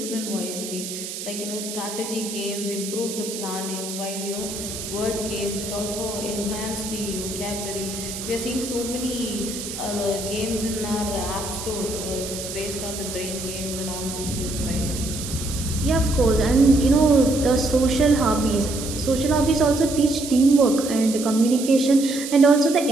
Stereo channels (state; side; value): noise; right; hiss, 8 dB below the sound